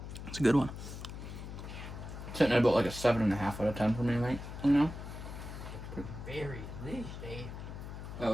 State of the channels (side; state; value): left; noise; hum, 9 dB below the sound